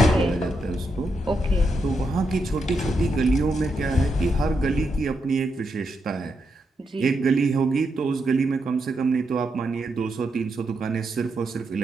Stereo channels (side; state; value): both; normal; correlation 0.83